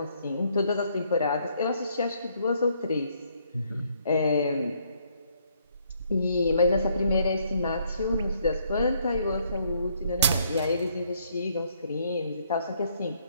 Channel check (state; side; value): inverted; both; correlation -0.69